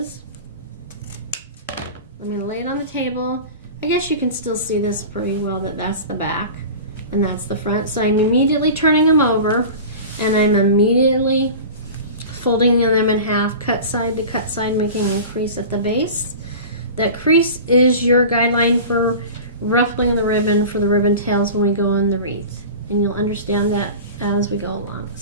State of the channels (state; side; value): inverted; both; correlation -0.34